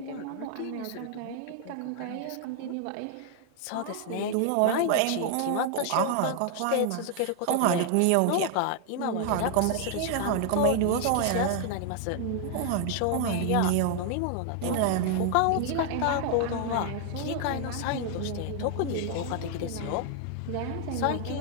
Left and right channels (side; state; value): both; different; correlation 0.00